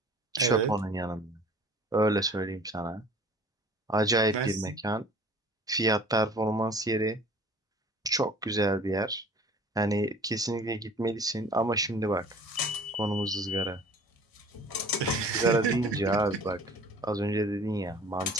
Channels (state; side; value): normal; both; correlation 0.47